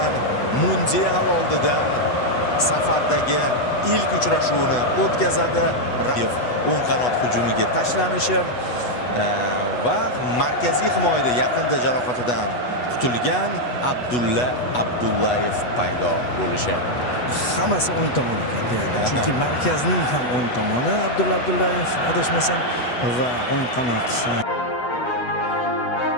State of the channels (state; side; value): late; right; 8.1 ms